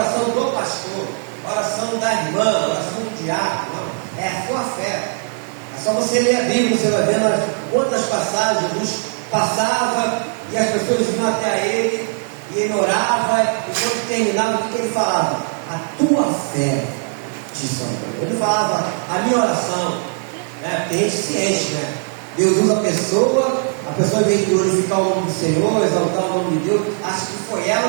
do pastor, a oração da irmã, a oração do diácono, não. É a sua fé. É só você ler a Bíblia, você vai vendo quantas passagens Jesus passava e as pessoas iam até ele e ele orava, e quando terminava, o que ele falava? A tua fé te salvou. Ele falava a minha oração, né? Tem gente ciente, né? Deus usa a pessoa em vez de glorificar o nome do Senhor, exaltar o nome de Deus, acha que foi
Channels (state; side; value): silent; left; 55 dB below the other